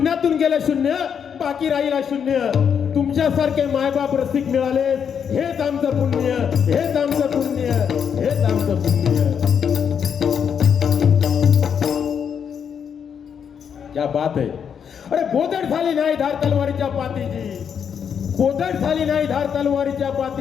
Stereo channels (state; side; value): quieter; right; 7.5 dB